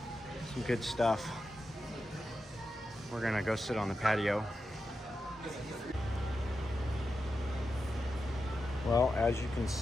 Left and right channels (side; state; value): both; normal; correlation 0.89